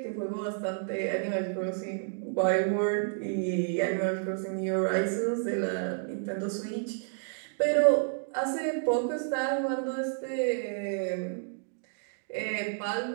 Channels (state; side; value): silent; left; digital silence